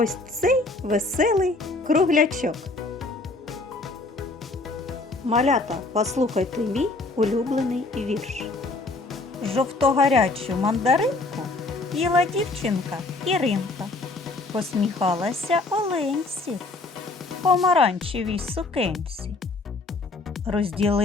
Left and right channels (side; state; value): right; quieter; 3.2 dB